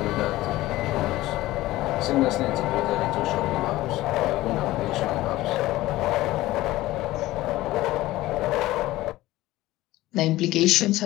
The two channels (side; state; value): right; quieter; 17.0 dB